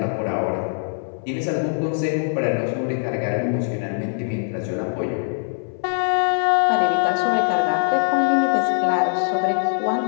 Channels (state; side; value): silent; right; 60 dB below the other